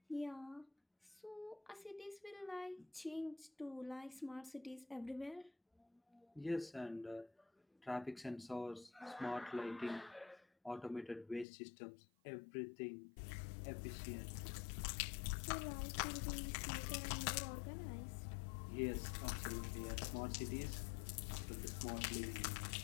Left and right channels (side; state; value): right; drops out; at 11.5 s